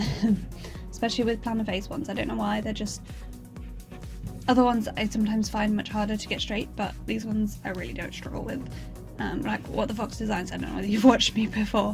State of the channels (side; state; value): both; identical; correlation 1.00